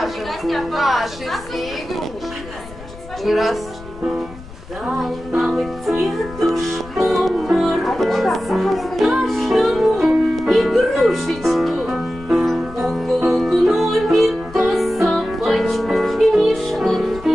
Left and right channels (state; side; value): noise; left; rumble, 17 dB below the sound